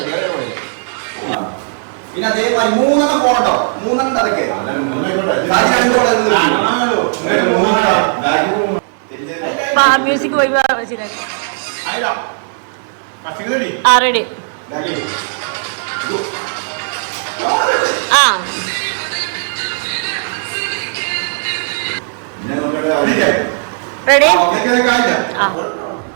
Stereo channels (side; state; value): left; silent; digital silence